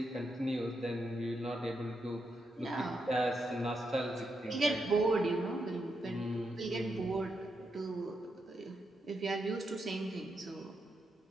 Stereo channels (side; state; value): both; normal; correlation 0.83